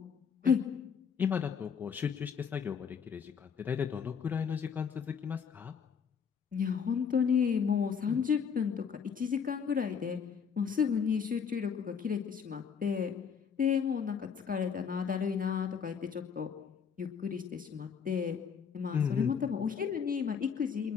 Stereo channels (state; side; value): quieter; right; 6.7 dB